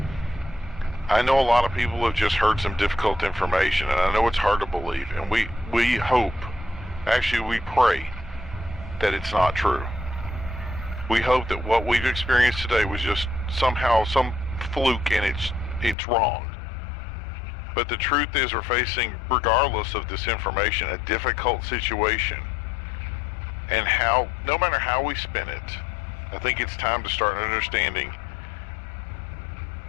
I know a lot of people have just heard some difficult information, and I know it's hard to believe. And we hope, actually we pray, that it's not true. We hope that what we've experienced today was just somehow some fluke and it's wrong. But the truth is we're facing, regardless of this information, a difficult situation. And no matter how we spin it, I think it's time to start understanding.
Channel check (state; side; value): drops out; right; at 16.0 s